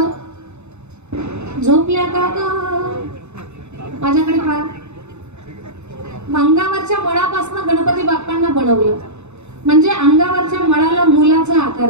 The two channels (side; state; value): left; late; 0.82 ms